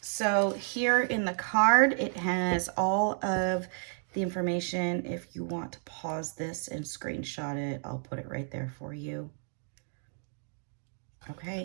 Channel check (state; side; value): silent; left; 57 dB below the other